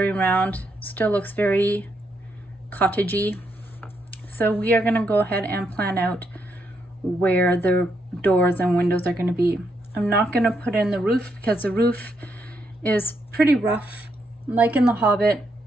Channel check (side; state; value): both; normal; correlation 0.78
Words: round, still looks very cottagey. So we are going to go ahead and plan out where the doors and windows are going to be. I'm not going to put in the roof because the roof is pretty rough, like in the Hobbit